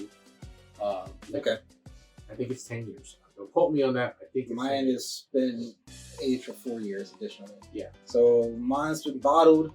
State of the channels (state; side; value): identical; both; correlation 1.00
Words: Okay. I think it's 10 years. Don't quote me on that. I think it's Mine has been aged for 4 years additionally. Yeah. So mine's been bottled